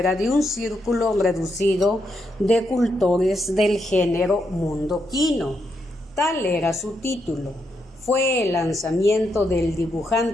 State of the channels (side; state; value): both; normal; correlation 0.81